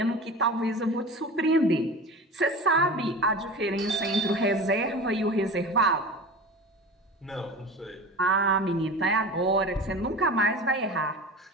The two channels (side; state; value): both; normal; correlation 0.33